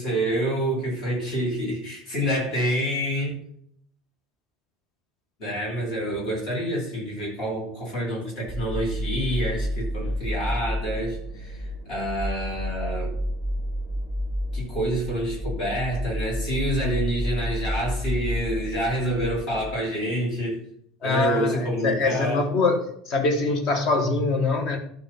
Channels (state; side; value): normal; both; correlation 0.48